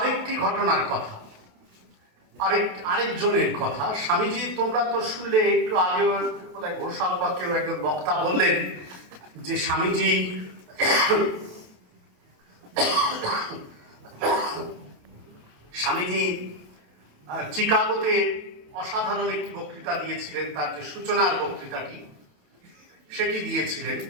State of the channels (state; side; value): late; left; 28 ms